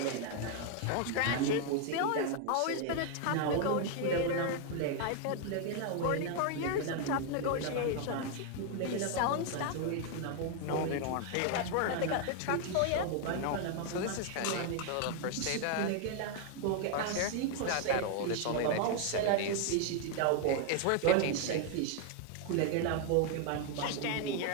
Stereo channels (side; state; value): both; different; correlation 0.00